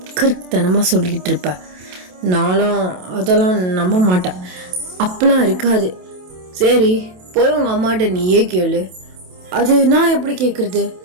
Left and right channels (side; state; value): left; late; 27 ms